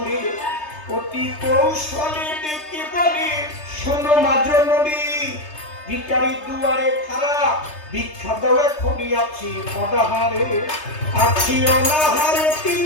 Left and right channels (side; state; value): right; late; 3.3 ms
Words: অতি কৌশলে ডেকে বলে, শোনো মা জননী, ভিখারি দুয়ারে খাড়া, ভিক্ষা দাও এখনই আছি অনাহারে, আছি অনাহারে 3